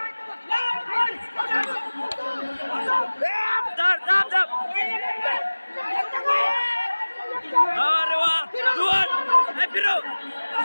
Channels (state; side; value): inverted; both; correlation -1.00